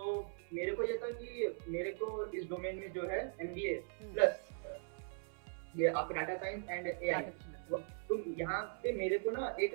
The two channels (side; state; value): left; silent; 51 dB below the other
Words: मेरे को ये था कि मेरे को इस डोमेन में जो है एमबीए प्लस ये आपका डाटा साइंस एंड एआई, तो यहाँ पे मेरे को ना